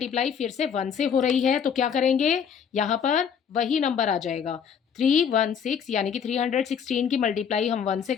फिर से 1 से हो रही है, तो क्या करेंगे, यहाँ पर वही नंबर आ जाएगा 316, यानी कि 316 की मल्टीप्लाई हम 1 से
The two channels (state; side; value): quieter; right; 7.4 dB